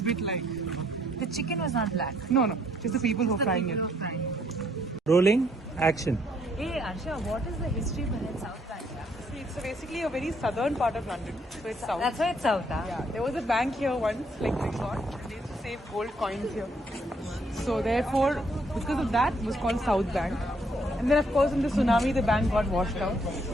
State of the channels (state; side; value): normal; both; correlation 0.68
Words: bit like The chicken was not black. no, just the people who are frying it. Rolling action. Hey Arsha, what is the history behind South Bank? See, it's basically a very southern part of London, so it's south. That's why it's South, huh? Yeah, there was a bank here once, like Resort, and they used to save gold coins here. So therefore, because of that, it was called South Bank. And then of course in the tsunami, the bank got washed out.